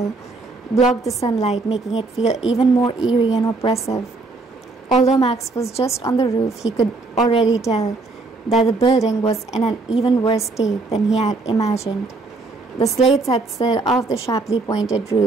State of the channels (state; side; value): quieter; left; 3.6 dB